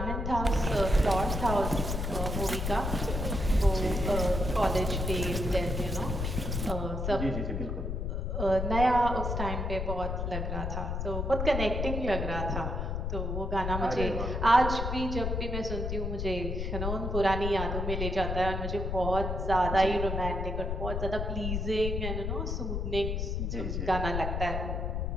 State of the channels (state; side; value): noise; left; rumble, 2 dB below the sound